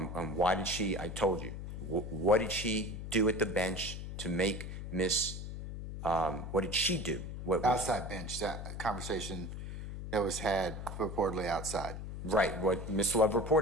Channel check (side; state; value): left; noise; hum, 7 dB below the sound